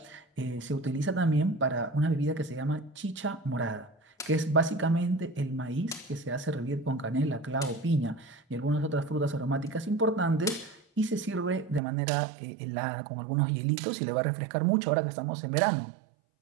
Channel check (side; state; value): left; drops out; at 11.8 s